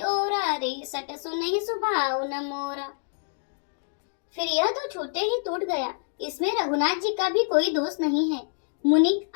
ओरा रे सट सुनहि सुभाव न मोरा। फिर यह तो छूटे ही टूट गया, इसमें रघुनाथ जी का भी कोई दोष नहीं है। मुनि,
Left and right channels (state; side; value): silent; right; digital silence